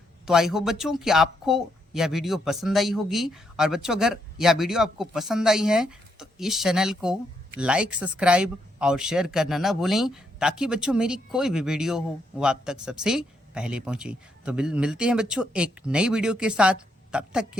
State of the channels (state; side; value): normal; both; correlation 0.77